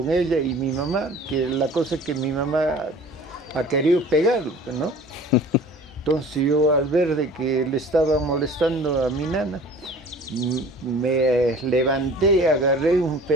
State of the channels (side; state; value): both; normal; correlation 0.45